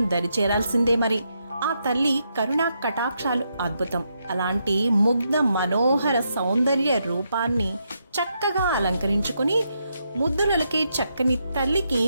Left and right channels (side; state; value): both; inverted; correlation -0.80